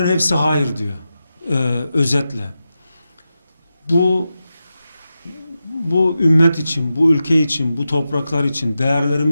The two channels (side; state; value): both; inverted; correlation -0.91